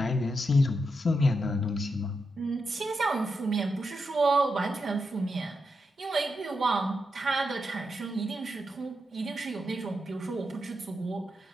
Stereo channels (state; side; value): normal; both; correlation 0.85